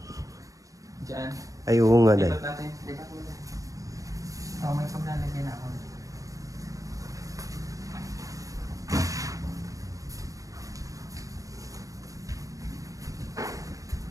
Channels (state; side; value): late; left; 0.16 ms